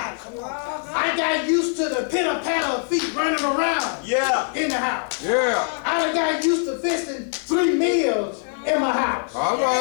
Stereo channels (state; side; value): silent; right; 60 dB below the other